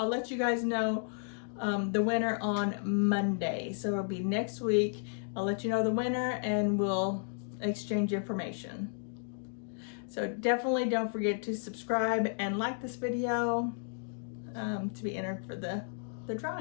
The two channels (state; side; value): silent; right; digital silence